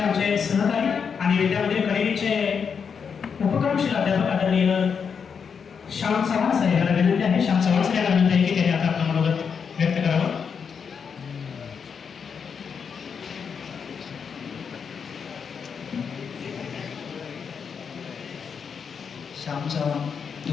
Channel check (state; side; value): quieter; right; 6.4 dB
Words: सहकारी आणि विद्यामंदिर करेलीचे उपक्रमशील अध्यापक आदरणीय श्याम चव्हाण साहेब यांना विनंती आहे. श्याम चव्हाण साहेब यांना विनंती आहे की त्यांनी आता आपलं मनोगत व्यक्त करावं. श्याम चव्हाण